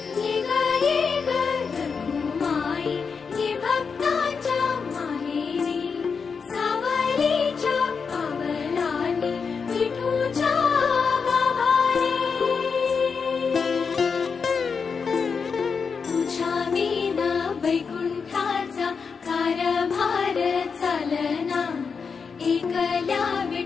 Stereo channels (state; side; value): quieter; right; 5.6 dB